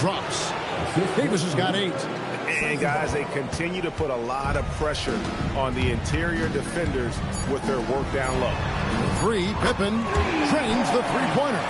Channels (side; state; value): both; identical; correlation 1.00